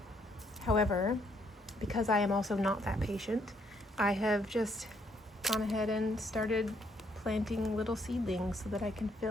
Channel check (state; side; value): normal; both; correlation 0.71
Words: However, because I am also not that patient, I have just gone ahead and started planting little seedlings so that I can